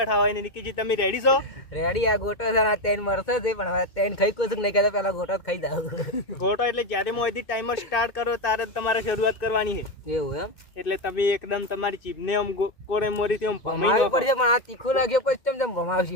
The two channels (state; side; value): late; right; 2.6 ms